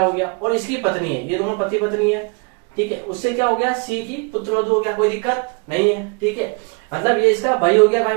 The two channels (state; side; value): quieter; left; 32.7 dB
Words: हो गया, और इसकी पत्नी है, ये दोनों पति पत्नी है। ठीक है, उससे क्या हो गया? सी की पुत्र वधु हो गया, कोई दिक्कत नहीं है। ठीक है, मतलब ये इसका भाई हो गया।